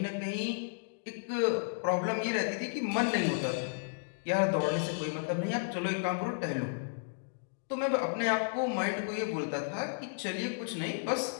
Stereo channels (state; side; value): silent; right; digital silence